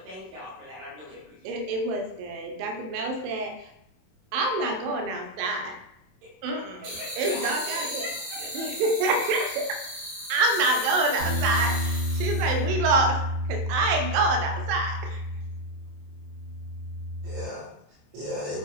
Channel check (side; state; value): left; late; 27 ms